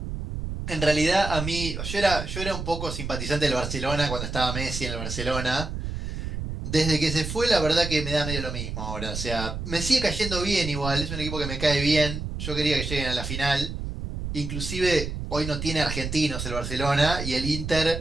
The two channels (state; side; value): noise; right; rumble, 5 dB below the sound